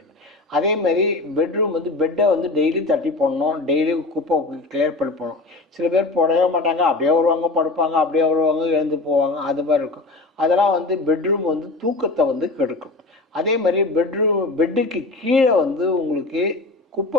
அதேமாதிரி பெட்ரூம் வந்து பெட்டை வந்து டெய்லி தட்டி போடணும், டெய்லி குப்பை கிளியர் பண்ணி போடணும். சில பேர் போடவே மாட்டாங்க, அப்படியே வருவாங்க படுப்பாங்க, அப்படியே வருவாங்க எழுந்து போவாங்க, அது மாதிரி இருக்கும். அதெல்லாம் வந்து பெட்ரூம் வந்து தூக்கத்தை வந்து கெடுக்கும். அதே மாதிரி பெட்டுக்கு கீழே வந்து உங்களுக்கு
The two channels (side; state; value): right; quieter; 3.2 dB